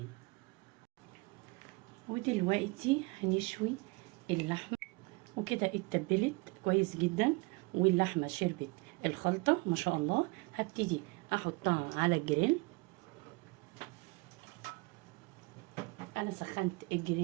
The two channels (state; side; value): quieter; left; 27.0 dB